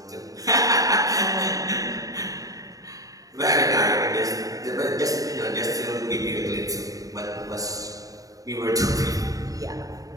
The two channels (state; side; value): late; left; 0.17 ms